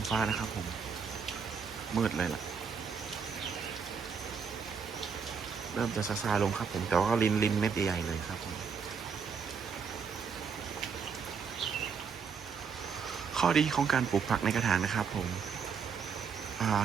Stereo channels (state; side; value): quieter; left; 6.1 dB